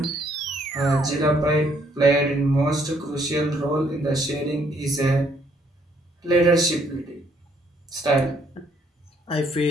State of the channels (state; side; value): normal; both; correlation 0.68